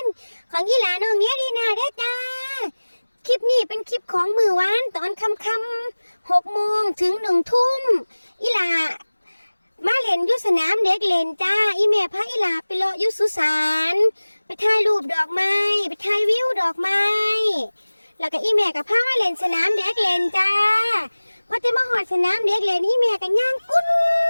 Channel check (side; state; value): both; inverted; correlation -1.00